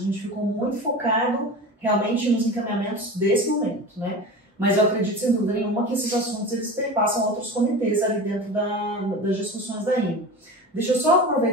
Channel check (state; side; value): normal; both; correlation 0.31